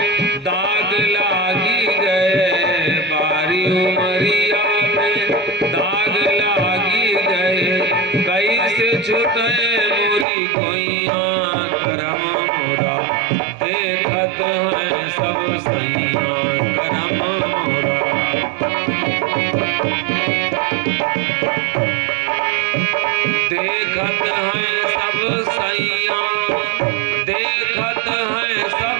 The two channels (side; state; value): left; drops out; at 10.2 s